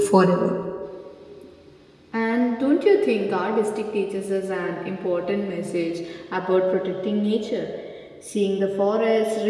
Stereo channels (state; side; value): identical; both; correlation 1.00